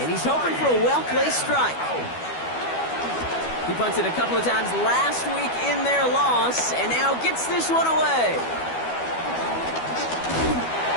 And he's hoping for a well-placed strike. He punted a couple of times last week in their loss, and now gets this one away.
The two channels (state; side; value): late; right; 12 ms